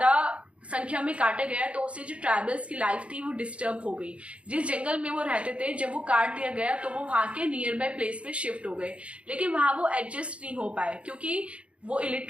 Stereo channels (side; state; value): left; late; 0.061 ms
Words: संख्या में काटा गया तो उससे जो ट्राइबल्स की लाइफ थी वो डिस्टर्ब हो गई। जिस जंगल में वो रहते थे, जब वो काट दिया गया तो वो वहां के नियर बाय प्लेस पे शिफ्ट हो गए, लेकिन वहां वो एडजस्ट नहीं हो पाए, क्योंकि वो